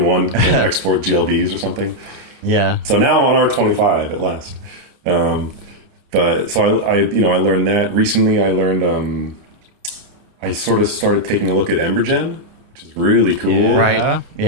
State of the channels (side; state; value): left; late; 29 ms